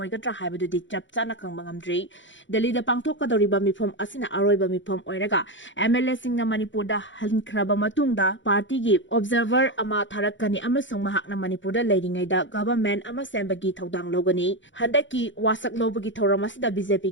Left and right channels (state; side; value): late; right; 0.55 ms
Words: Habadu Dik Chapsana Kangangamdri, Delhi the Takthokkadouri Mipom Asina Aroiba Mipom Oiraga, MLA Singh Manipur da hankraba matungda party gi observer ama tharakani amasung mahakna Manipur da leiringai da government ama sembagi thodang logani handaki wasak lobagi thoramasida